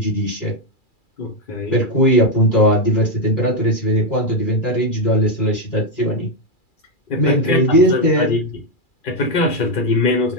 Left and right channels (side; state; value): right; late; 2.4 ms